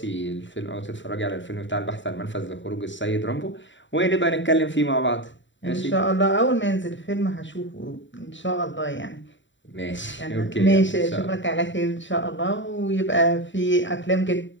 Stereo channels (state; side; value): late; right; 0.54 ms